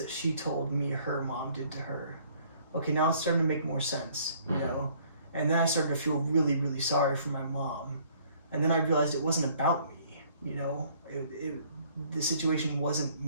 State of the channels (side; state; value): both; inverted; correlation -0.60